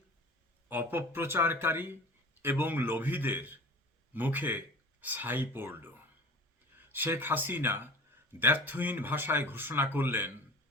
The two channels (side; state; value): both; normal; correlation 0.39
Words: অপপ্রচারকারী এবং লোভীদের মুখে ছাই পড়ল। শেখ হাসিনা দ্ব্যর্থহীন ভাষায় ঘোষণা করলেন,